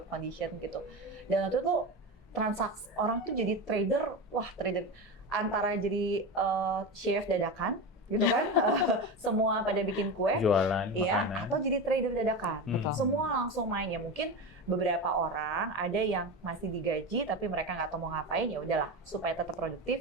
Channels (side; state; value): both; normal; correlation 0.22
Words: condition gitu. Dan waktu itu transaksi orang tuh jadi trader, trader antara jadi chef dadakan gitu kan, semua pada bikin kue, jualan iya, makanan, atau jadi trader dadakan. Semua langsung main ya. Mungkin beberapa orang ada yang masih digaji tapi mereka nggak tahu mau ngapain, ya udahlah supaya tetap